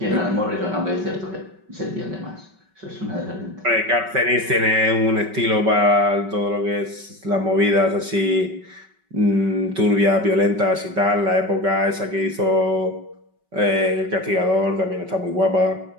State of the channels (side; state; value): left; late; 5.3 ms